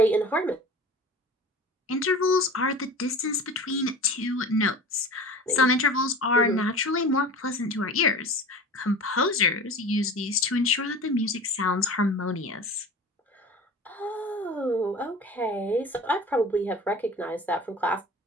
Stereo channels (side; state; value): both; normal; correlation 0.37